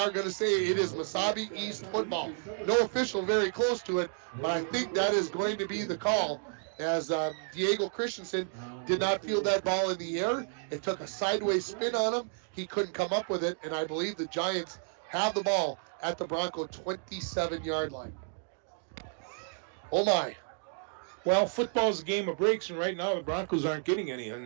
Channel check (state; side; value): silent; left; digital silence